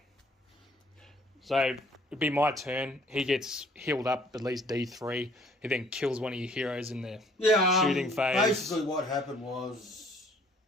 So it'd be my turn. He gets healed up at least D3. He then kills one of your heroes in the shooting phase. Basically, what happened was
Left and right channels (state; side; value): normal; both; correlation 0.58